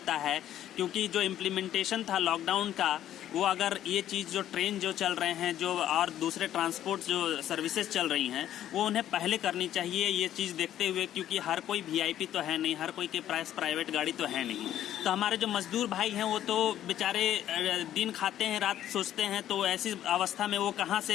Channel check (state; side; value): quieter; right; 11.7 dB